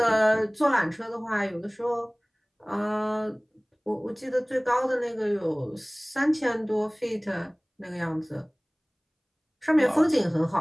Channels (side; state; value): both; identical; correlation 1.00